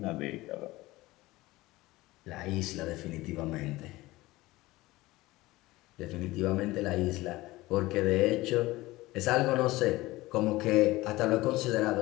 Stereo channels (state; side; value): quieter; right; 19.1 dB